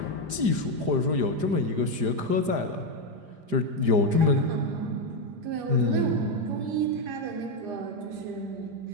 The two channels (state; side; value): late; left; 5.0 ms